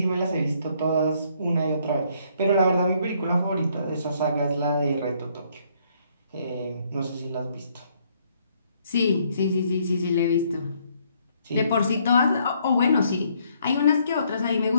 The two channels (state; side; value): inverted; both; correlation -0.68